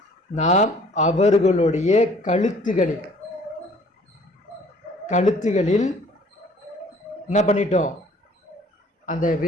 நாம் அவர்களுடைய கழுத்துகளில் என்ன பண்ணிட்டோம், அந்த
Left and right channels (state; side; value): normal; both; correlation 0.55